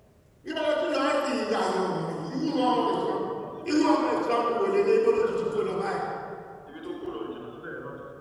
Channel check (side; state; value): both; identical; correlation 1.00